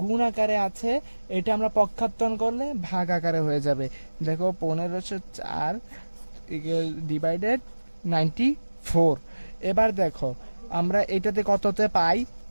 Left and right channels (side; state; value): both; inverted; correlation -1.00